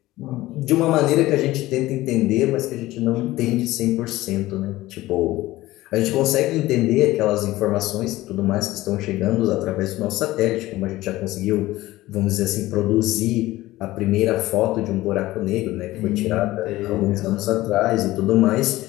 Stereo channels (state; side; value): quieter; right; 17.3 dB